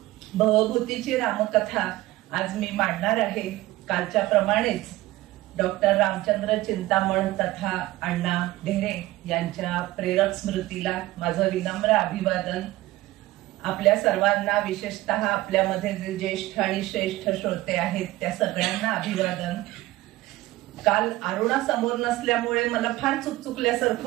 भवभूतीची रामकथा आज मी मांडणार आहे. कालच्या प्रमाणेच डॉक्टर रामचंद्र चिंतामण तथा अण्णा ढेरे यांच्या प्रेरक स्मृतीला माझं विनम्र अभिवादन. आपल्या सर्वांना, विशेषतः आपल्यामध्ये जे ज्येष्ठ आणि श्रेष्ठ श्रोते आहेत त्या सगळ्यांना अभिवादन. काल अरुणा समोर नसल्यामुळे मला फार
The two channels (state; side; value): quieter; left; 17.6 dB